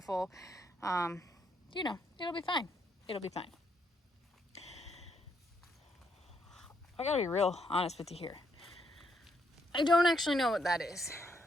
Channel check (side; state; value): both; normal; correlation 0.75